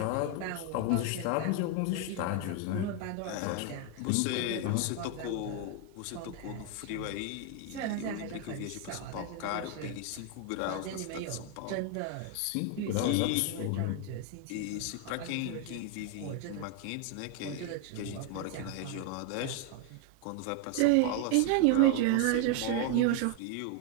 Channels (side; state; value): both; different; correlation 0.01